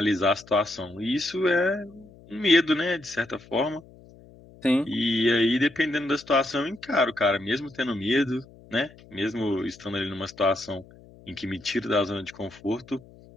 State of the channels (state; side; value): noise; left; hum, 23 dB below the sound